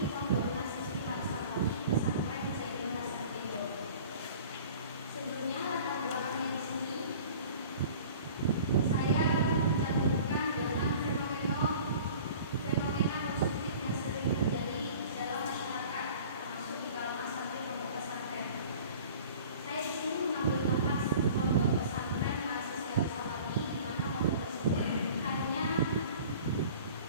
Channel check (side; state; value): both; inverted; correlation -0.45